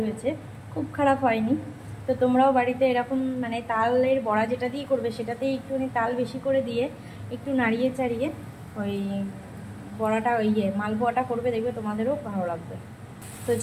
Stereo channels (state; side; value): identical; both; correlation 1.00